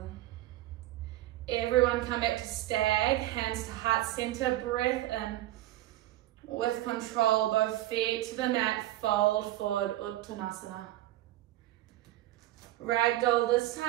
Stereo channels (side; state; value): left; quieter; 15.4 dB